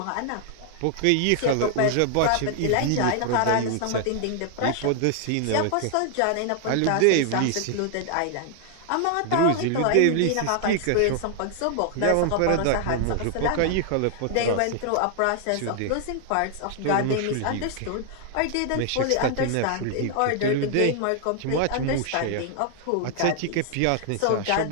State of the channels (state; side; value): different; both; correlation 0.00